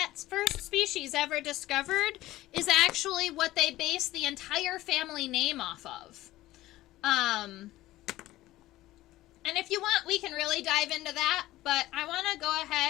first species ever discovered is actually what they base the entire family name off of. And if you want, we can really dive into that, but I want to go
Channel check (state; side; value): quieter; right; 16.3 dB